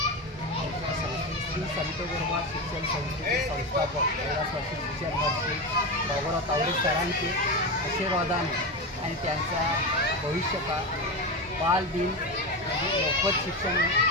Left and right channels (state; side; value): normal; both; correlation 0.18